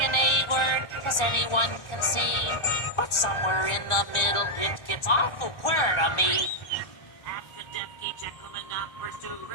A word, as anyone can see. But somewhere in the middle, it gets awful queer to me. Abkadabky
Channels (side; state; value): right; late; 1.4 ms